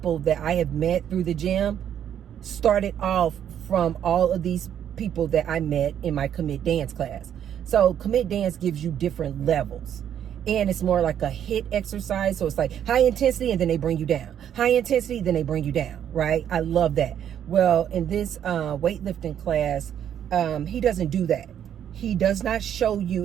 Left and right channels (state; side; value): quieter; left; 9.6 dB